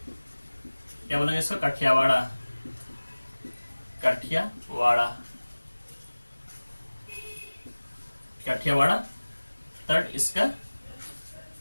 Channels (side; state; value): both; inverted; correlation -1.00